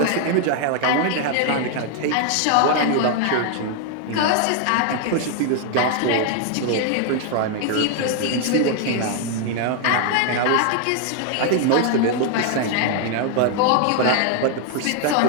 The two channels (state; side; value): different; both; correlation 0.00